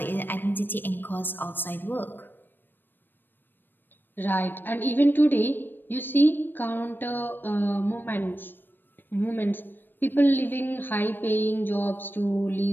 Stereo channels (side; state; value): right; late; 0.094 ms